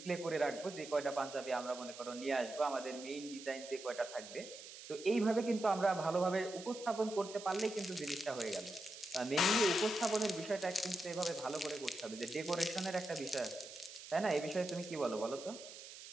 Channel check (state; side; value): noise; right; hiss, 13 dB below the sound